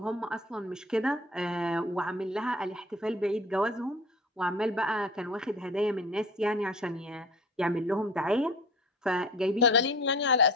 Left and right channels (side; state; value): both; normal; correlation 0.41